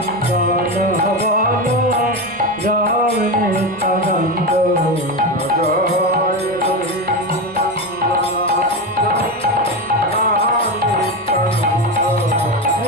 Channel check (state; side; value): normal; both; correlation 0.17